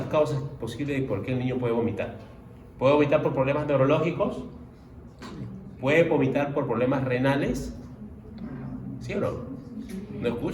causas posibles de por qué el niño puede vomitar. Puede vomitar por problemas neurológicos, puede vomitar por problemas renales, ¿sí o no? ¿No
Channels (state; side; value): identical; both; correlation 1.00